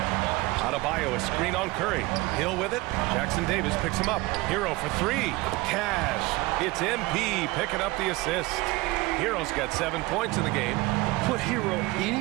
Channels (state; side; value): quieter; left; 21.6 dB